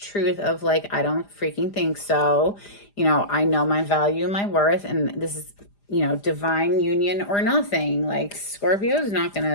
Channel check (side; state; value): right; late; 4.9 ms